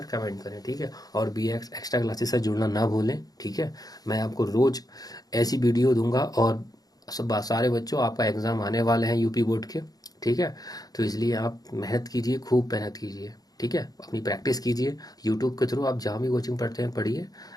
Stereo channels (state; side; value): late; right; 0.18 ms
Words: कमेंट करें, ठीक है। और BX एक्स्ट्रा क्लासेस से जुड़ना ना भूलें, ठीक है। मैं आपको रोज ऐसी वीडियो दूंगा, और सब सारे बच्चों आपका एग्जाम आने वाले हैं यूपी बोर्ड के, ठीक है। तो इसलिए आप मेहनत कीजिए, खूब मेहनत कीजिए, ठीक है। अपनी प्रैक्टिस कीजिए यूट्यूब के थ्रू, आप जहाँ भी कोचिंग पढ़ते हैं पढ़िए,